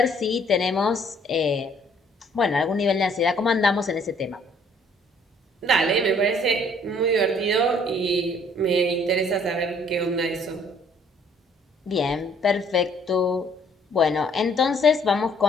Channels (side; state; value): both; normal; correlation 0.61